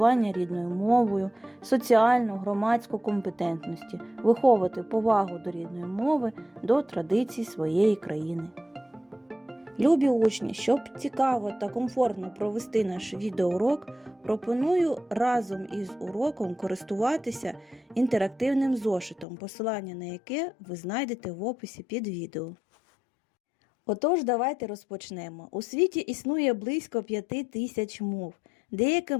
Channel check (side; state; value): right; drops out; at 19.2 s